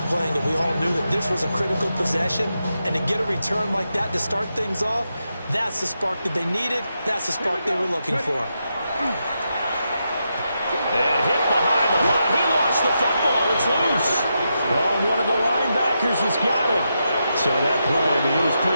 it. We all knew that this was a critical possession, and to get a return like that to start things off, that's the spark that they needed. That's the spark they were looking for. And hit behind the line. He lost the football. It's loose. Oh, one of the linebackers has got it. So that play, I mean, it was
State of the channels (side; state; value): both; inverted; correlation -0.85